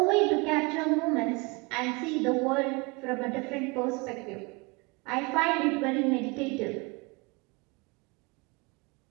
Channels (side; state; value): left; quieter; 27.7 dB